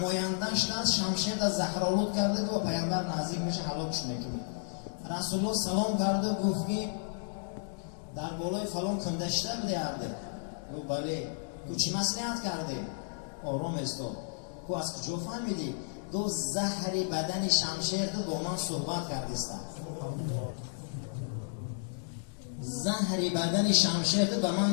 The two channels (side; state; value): right; silent; digital silence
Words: دست شمشیر در زهرآلود کرده و پیامبر نزدیک میشه هلاکش میکنه. رسول الله سلام کرده و گفت که در بالای فلان کندشته بوده ارده. گفت بله. گفت چی مصلحت کرده؟ آرام استاد. گفت از کجا فهمیدی؟ گفت زهر بدن شمشیر با من صحبت کردیستم. زهر بدن شمشیر به